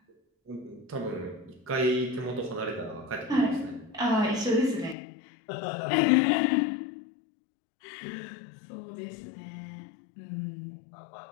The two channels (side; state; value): right; drops out; at 5.0 s